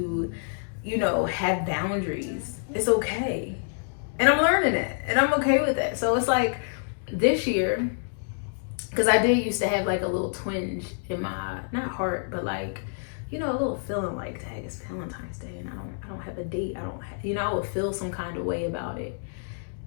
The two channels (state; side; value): silent; right; digital silence